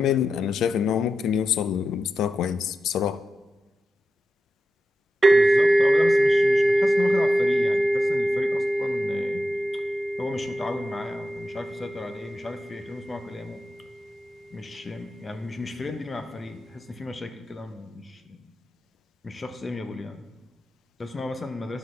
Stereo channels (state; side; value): normal; both; correlation 0.90